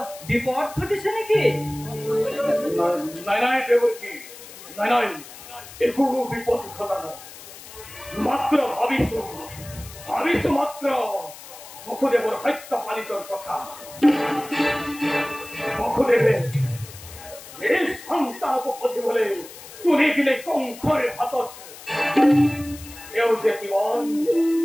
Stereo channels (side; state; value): left; noise; hiss, 16 dB below the sound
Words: বিপদ ঘটিছে নেকি? নাই নাই দেৱকী, নাই নাই একো বিপদ ঘটা নাই, মাত্ৰ ভাবিছো মাত্ৰ বসুদেৱৰ সত্য পালিতৰ কথা। বসুদেৱে এই সন্তানক পঠিয়াবলৈ তুলি দিলে কংসৰ হাতত। এওঁ যে কিমান